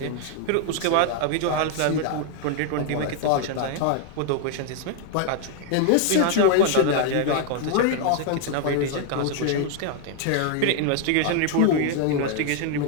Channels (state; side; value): different; both; correlation 0.00